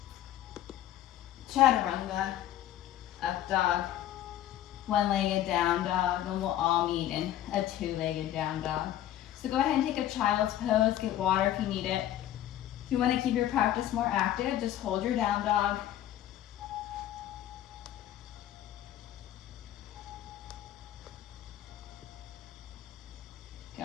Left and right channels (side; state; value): right; quieter; 12.4 dB